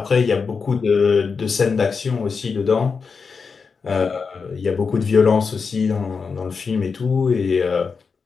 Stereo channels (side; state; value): right; quieter; 5.2 dB